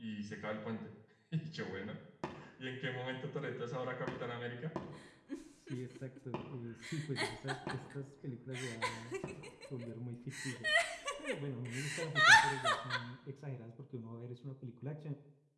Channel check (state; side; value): identical; both; correlation 1.00